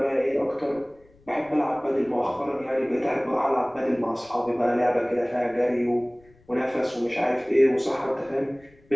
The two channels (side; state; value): left; noise; rumble, 30 dB below the sound